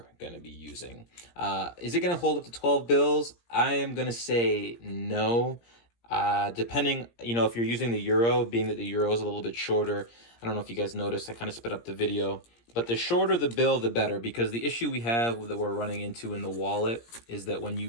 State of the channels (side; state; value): right; late; 17 ms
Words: going to be using. Is it going to hold up to 12 bills? I am going to say no. Depending, if you're using the euro, being that the euro is a little bit shorter, I don't know if you guys noticed, I kind of sped up the video. But the shorter the bill, the better, because the issue we have that we're running into in the wallet is that when